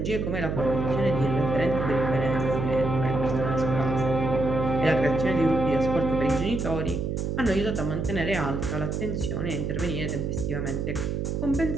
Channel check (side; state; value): right; noise; hum, 2 dB below the sound